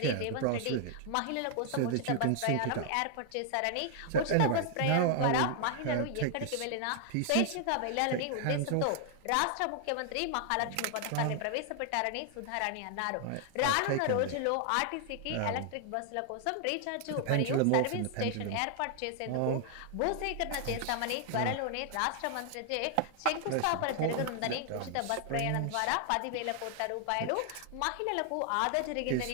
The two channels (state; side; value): different; both; correlation 0.00